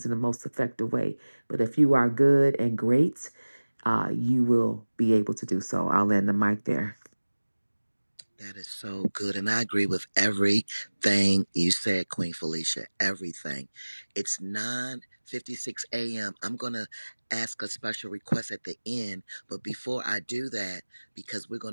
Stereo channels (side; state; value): both; inverted; correlation -1.00